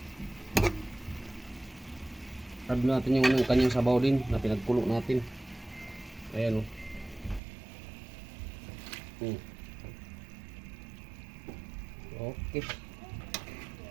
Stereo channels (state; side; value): drops out; left; at 7.4 s